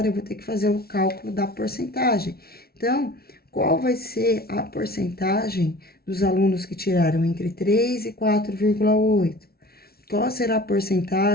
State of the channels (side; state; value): right; late; 0.44 ms